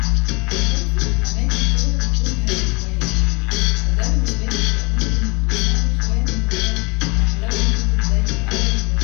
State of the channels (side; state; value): right; quieter; 28.1 dB